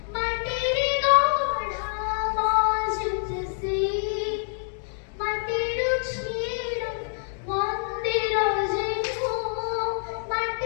মাটির গড়া, মসজিদ সেই মাটির ছিল। মন্দির যেন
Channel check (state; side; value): silent; right; digital silence